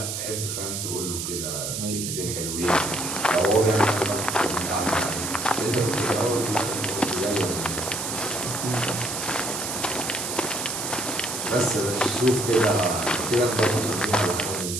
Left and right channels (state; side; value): noise; right; hiss, 4 dB below the sound